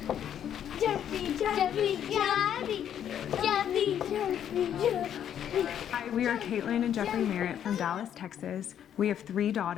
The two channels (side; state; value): right; quieter; 9.7 dB